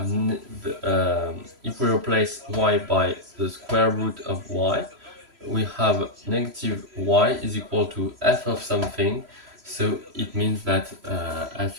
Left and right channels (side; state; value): left; late; 3.0 ms